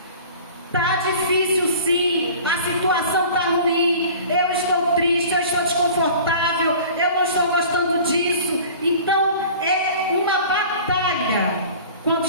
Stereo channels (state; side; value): inverted; both; correlation -0.42